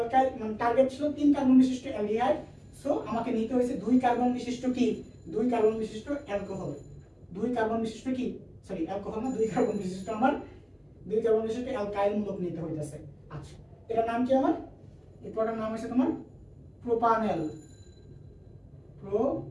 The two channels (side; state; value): both; identical; correlation 1.00